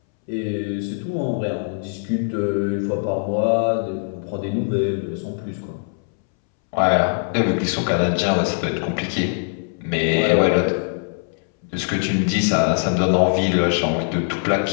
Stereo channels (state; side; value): silent; right; 64 dB below the other